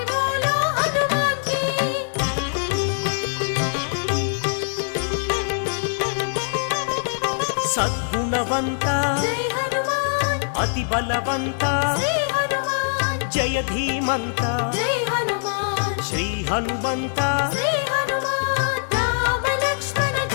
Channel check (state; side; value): silent; right; digital silence